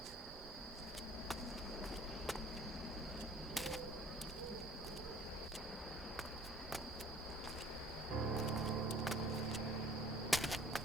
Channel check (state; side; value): normal; both; correlation 0.53